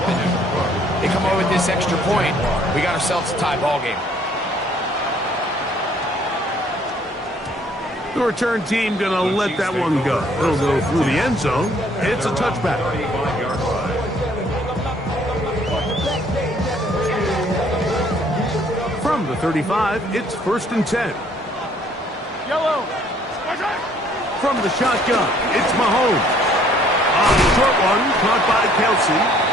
and they come away with this extra point. We got ourselves a tie ball game. The return team going to let that one go. It'll go through the end zone. It's a touchback. From the 35, it's 1st and 10. Yellow. From the shotgun, it's Mahomes. On the short one, caught by Kelsey.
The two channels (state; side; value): normal; both; correlation 0.61